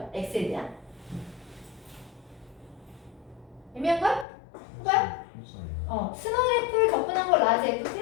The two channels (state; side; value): drops out; right; at 4.2 s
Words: x에 대한? 애매한걸? 해봐요? 스몰 f를 접근한 걸 라지